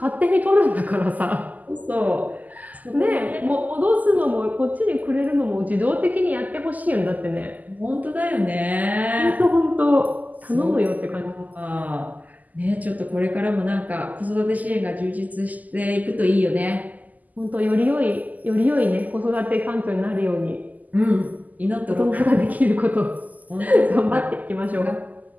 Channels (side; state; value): left; late; 0.080 ms